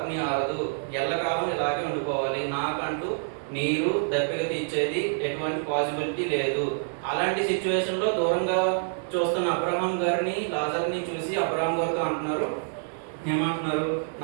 ఆరదు, ఎల్లకాలం ఇలాగే ఉండిపోవాలి. నాకంటూ నీరు దప్పిక తీర్చేది ఎటువంటి పాసిబిలిటీ లేదు. అలాంటి సిచ్యువేషన్ లో దూరంగా చూస్తున్న అబ్రహాం గారిని, లాజర్ని చూసి అబ్రహాం గారితో అంటున్నారు, ఏమంటున్నారు?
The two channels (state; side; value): silent; left; digital silence